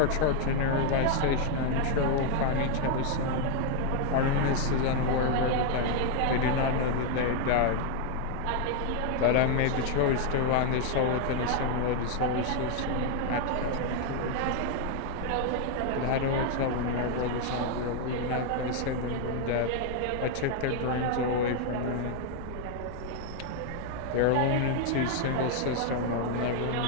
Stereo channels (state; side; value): different; both; correlation 0.00